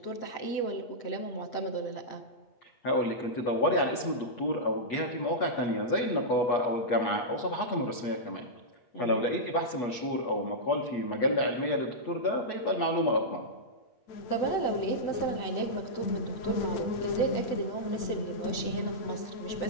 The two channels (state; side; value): late; right; 8.2 ms